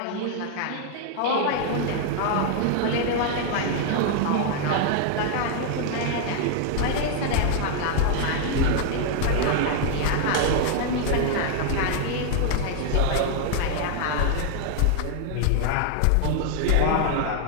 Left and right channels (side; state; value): both; different; correlation 0.00